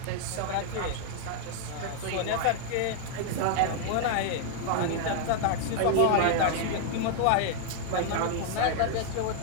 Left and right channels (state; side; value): different; both; correlation -0.01